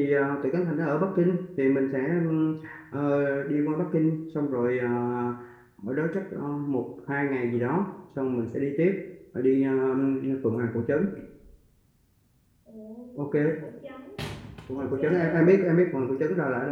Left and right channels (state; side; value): identical; both; correlation 1.00